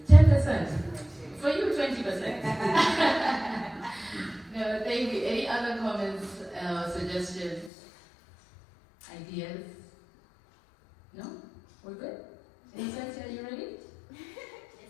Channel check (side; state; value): right; drops out; at 7.7 s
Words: 10%. For you, 20%. No, thank you. Any other comments, suggestions, ideas? No? We're good? Innocent, are you ready?